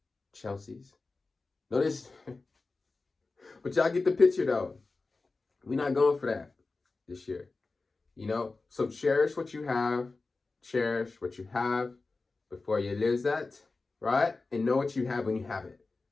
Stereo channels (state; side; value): quieter; right; 3.7 dB